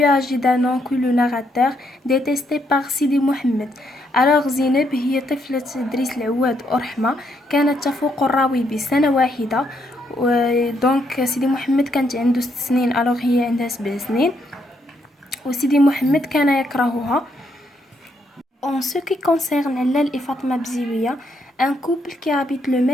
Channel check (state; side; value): normal; both; correlation 0.75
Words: âgée d'un an que le narrateur, détestée par Sidi Mohamed. Alors Zineb هي طفلة دريس العواد ورحمة، كانت تفوق الراوي بسنة واحدة. دونك سيدي محمد كانت عنده 6 سنين، alors هي عندها 7 سنين، وسيدي محمد كان يكرهها. En ce qui concerne Lal et Fatma Bziouia, un couple qui habite le